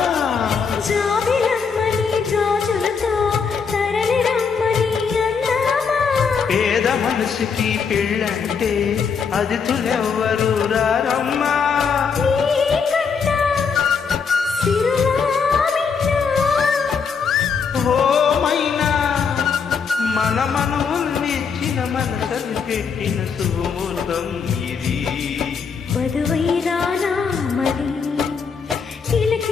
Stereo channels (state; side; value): quieter; right; 5.9 dB